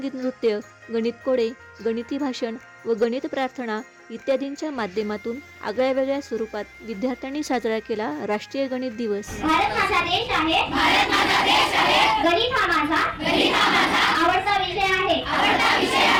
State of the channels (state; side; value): identical; both; correlation 1.00